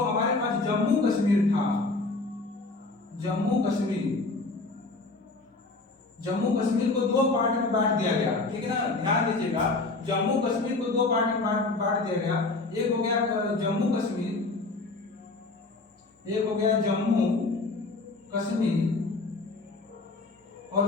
पास जम्मू कश्मीर था, जम्मू कश्मीर को 2 पार्ट में बांट दिया गया, ठीक है ना। ध्यान दीजिएगा, जम्मू कश्मीर को 2 पार्ट में बांट दिया गया। एक हो गया जम्मू कश्मीर, एक हो गया जम्मू कश्मीर, और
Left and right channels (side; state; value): right; quieter; 3.4 dB